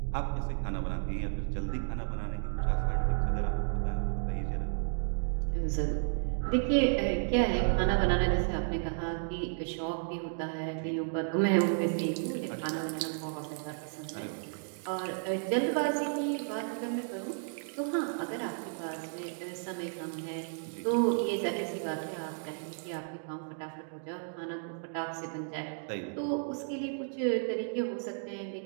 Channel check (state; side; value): silent; left; digital silence